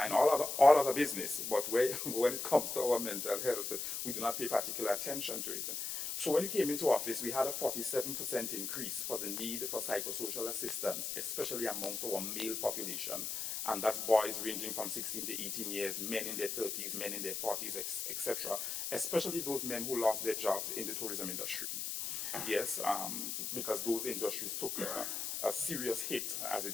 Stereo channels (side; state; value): left; noise; hiss, 3 dB below the sound